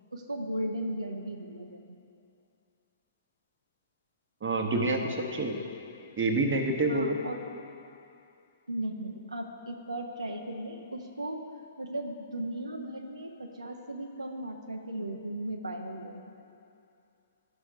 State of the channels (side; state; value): both; inverted; correlation -0.44